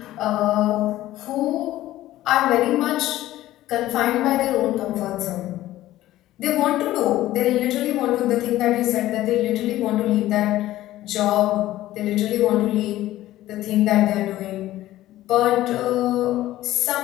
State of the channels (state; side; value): quieter; right; 15.0 dB